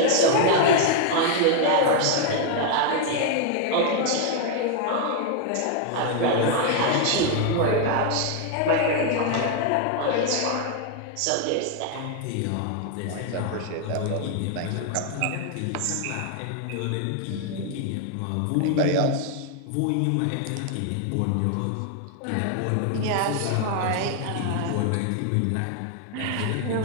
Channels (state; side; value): different; both; correlation 0.00